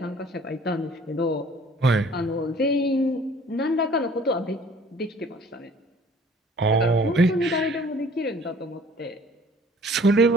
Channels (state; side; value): normal; both; correlation 0.53